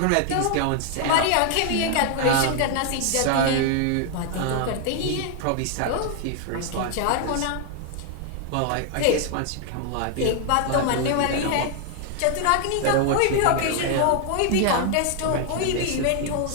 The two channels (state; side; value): different; both; correlation 0.00